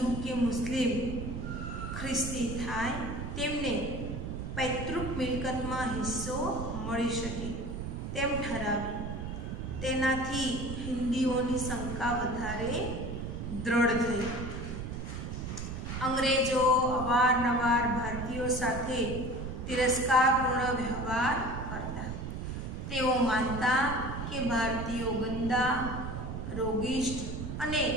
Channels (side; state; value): right; noise; rumble, 5 dB below the sound